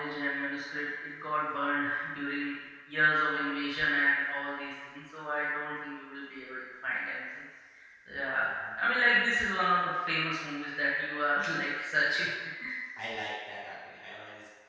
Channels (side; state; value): both; identical; correlation 1.00